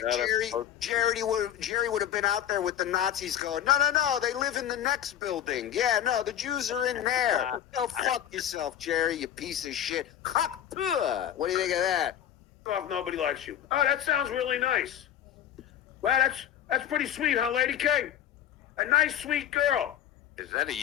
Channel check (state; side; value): quieter; right; 10.8 dB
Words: Jerry would have been out there with the Nazis going, no, they live in the next building. Yeah, no, the Jews are in there. Go fuck yourself, Jerry, you piece of shit. What do you think of that? off nobody likes you. Oh, that sounds really nice. Well, that's pretty sweet, huh, Lady K? A nice, sweet girl. Is that a